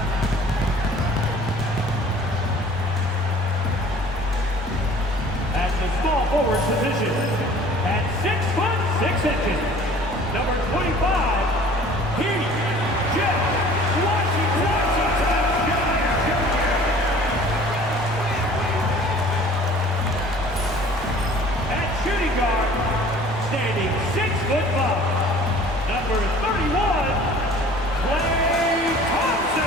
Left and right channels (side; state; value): both; normal; correlation 0.49